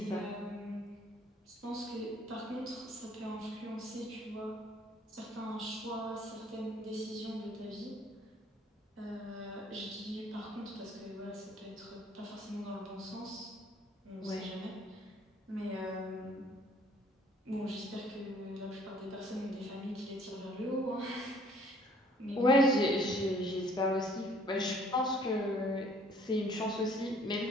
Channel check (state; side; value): normal; both; correlation 0.58